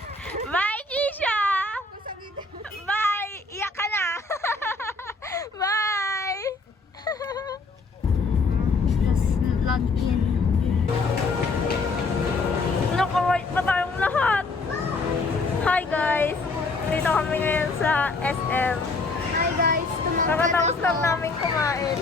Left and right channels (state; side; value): quieter; right; 3.7 dB